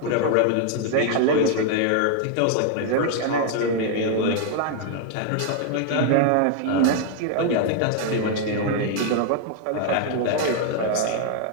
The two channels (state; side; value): different; both; correlation 0.00